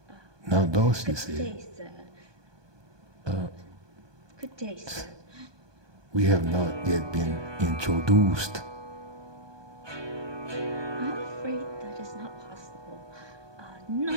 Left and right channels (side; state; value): left; late; 1.2 ms